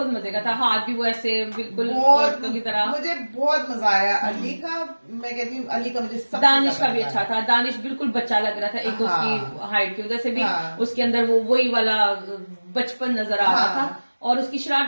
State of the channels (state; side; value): inverted; both; correlation -1.00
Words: मजे का था, हाथ भी वो ऐसे बिल्कुल औरतों की तरह, मुझे बहुत मजा आया अली का। मैं कहती हूँ अली का मुझे दानिश का भी अच्छा था, दानिश बिल्कुल बच्चा लग रहा था, एक उसकी हाइट की वजह से भी उसके अंदर वो वही वाला बचपन नजर आ रहा था, और उसकी